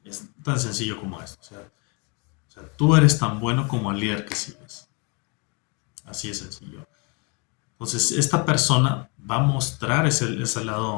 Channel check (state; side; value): quieter; right; 33.0 dB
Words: Es tan sencillo como esto. O sea, tú eres tan bueno como el líder que sigues. Así de sencillo. Entonces, esta persona va a mostrar ese